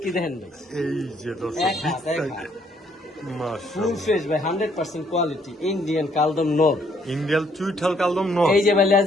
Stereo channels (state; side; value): normal; both; correlation 0.67